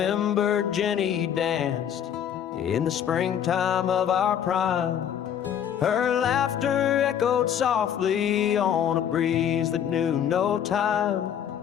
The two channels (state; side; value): quieter; right; 9.2 dB